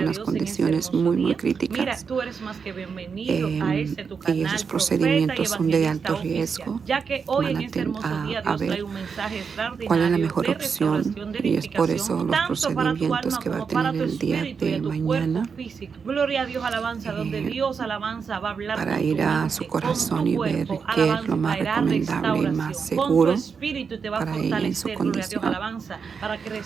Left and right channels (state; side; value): quieter; left; 5.9 dB